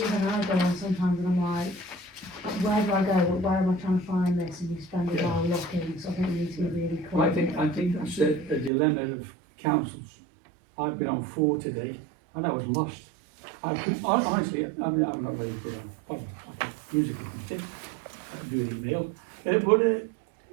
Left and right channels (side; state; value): left; drops out; at 8.7 s